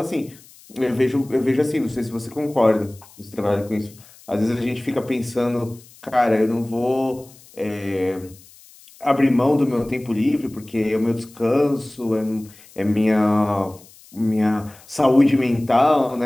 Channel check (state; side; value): noise; left; hiss, 24 dB below the sound